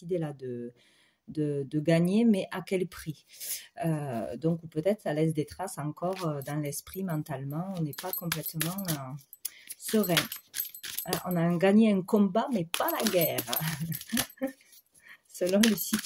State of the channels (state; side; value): identical; both; correlation 1.00